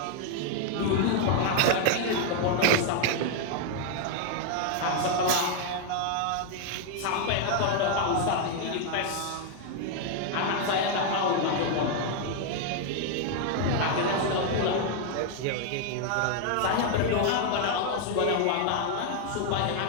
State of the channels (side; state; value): both; different; correlation 0.00